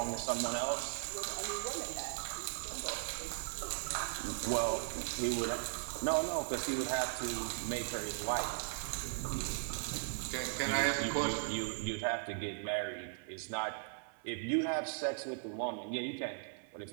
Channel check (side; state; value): left; silent; 52 dB below the other